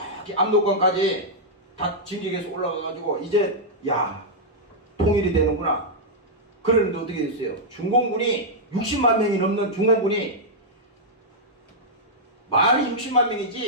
압록강까지 다 진격해서 올라가가지고 이제 야 통일이 되는구나. 그러는데 어떻게 됐어요? 중공군이 60만 명이 넘는 중공군이 말이 60만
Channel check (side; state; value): both; normal; correlation -0.07